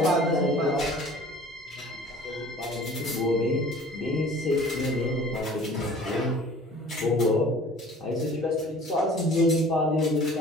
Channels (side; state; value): both; normal; correlation 0.47